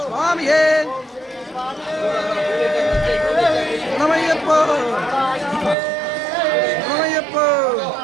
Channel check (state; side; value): drops out; left; at 5.8 s